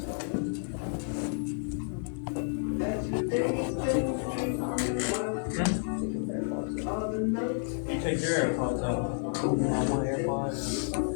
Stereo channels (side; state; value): right; silent; digital silence